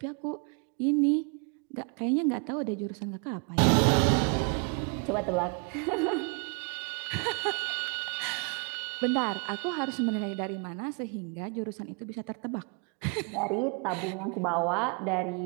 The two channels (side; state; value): left; quieter; 37.5 dB